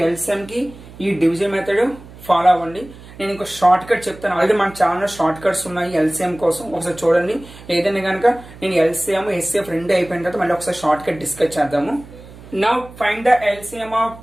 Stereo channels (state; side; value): noise; right; hum, 19 dB below the sound